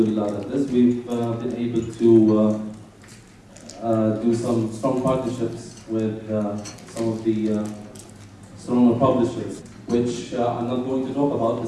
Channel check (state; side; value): identical; both; correlation 1.00